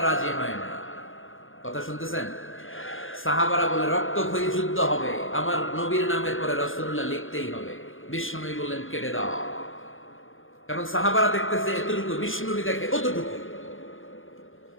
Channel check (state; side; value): late; right; 0.59 ms